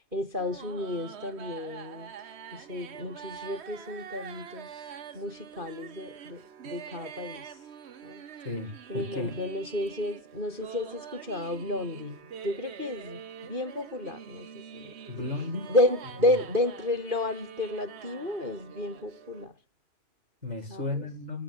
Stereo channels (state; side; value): late; left; 2.5 ms